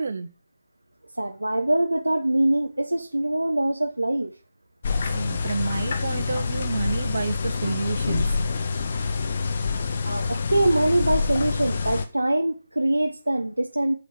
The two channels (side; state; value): both; inverted; correlation -0.93